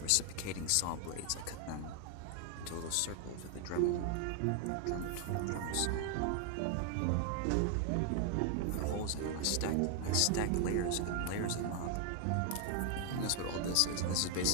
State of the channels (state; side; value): different; both; correlation 0.00